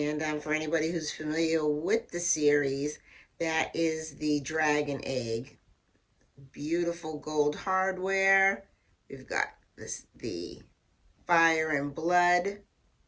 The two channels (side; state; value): both; identical; correlation 1.00